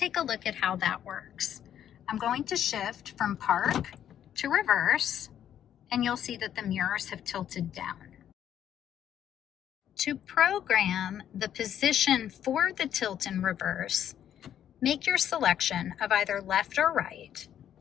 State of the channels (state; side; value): quieter; right; 10.2 dB